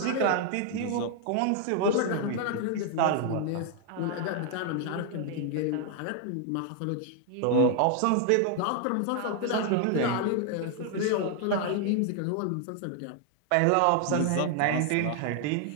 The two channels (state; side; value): different; both; correlation 0.00